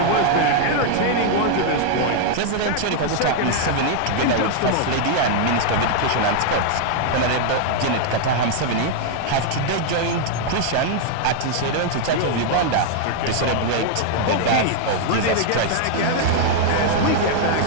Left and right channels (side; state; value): both; different; correlation 0.00